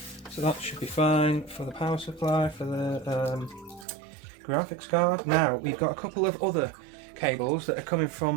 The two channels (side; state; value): left; drops out; at 3.9 s